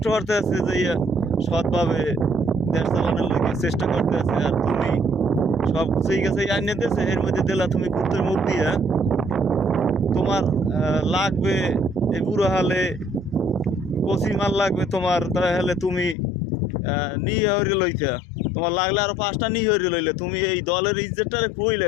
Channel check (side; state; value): right; drops out; at 16.2 s